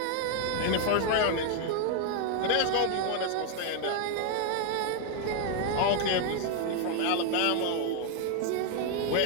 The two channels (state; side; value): different; both; correlation 0.00